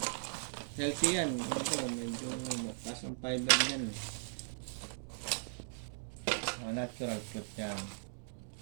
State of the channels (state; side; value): silent; left; digital silence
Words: healthy yan. Ito, medyo mataas ang fiber yan. Natural fruit yan.